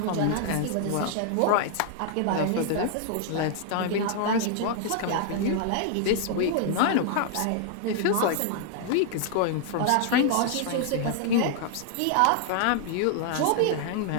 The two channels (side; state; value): both; different; correlation 0.00